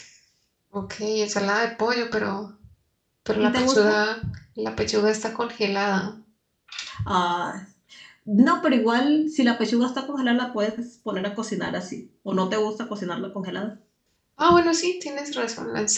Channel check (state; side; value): identical; both; correlation 1.00